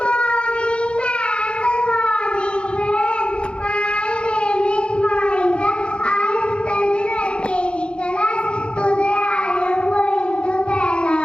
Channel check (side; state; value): right; late; 0.057 ms